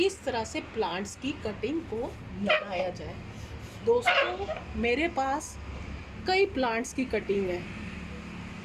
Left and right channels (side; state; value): both; identical; correlation 1.00